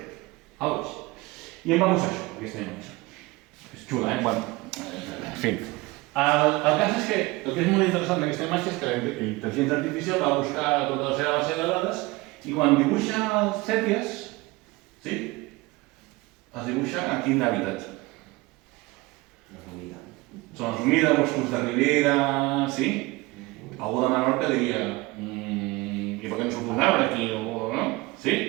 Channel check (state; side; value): quieter; left; 22.1 dB